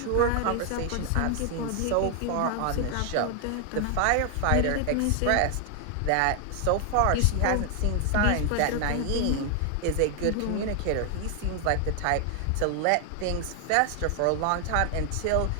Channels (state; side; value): different; both; correlation 0.00